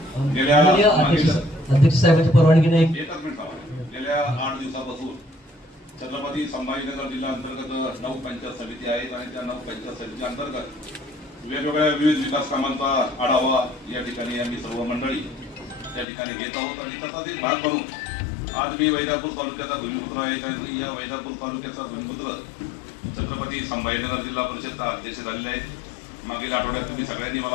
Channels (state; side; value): drops out; right; at 16.1 s